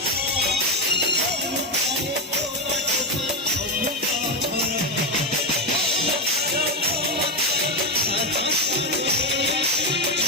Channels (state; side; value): normal; both; correlation 0.10